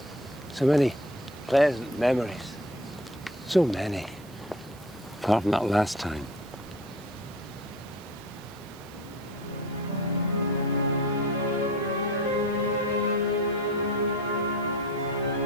So many pleasant memories. So many. Apart from that last time.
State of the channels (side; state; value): right; noise; hiss, 24 dB below the sound